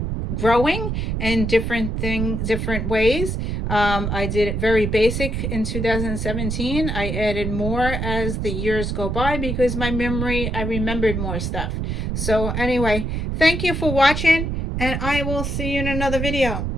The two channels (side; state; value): right; noise; rumble, 2 dB below the sound